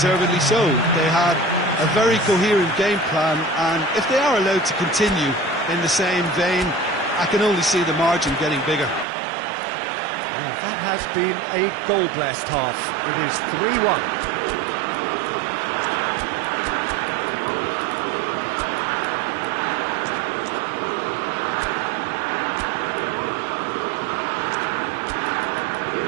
so. They had a very coherent game plan, and if they are allowed to continue in the same vein, I can only see the margin getting bigger. Well, that has been a goal-blessed half. It is 3-1.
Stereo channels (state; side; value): drops out; left; at 9.1 s